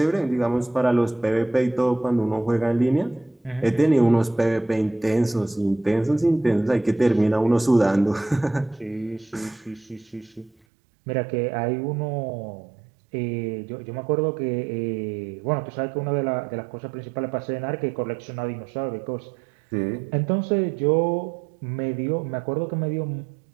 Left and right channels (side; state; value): left; drops out; at 10.5 s